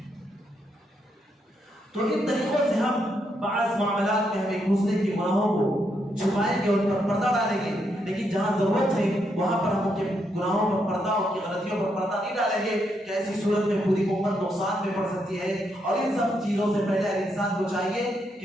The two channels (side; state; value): both; normal; correlation 0.79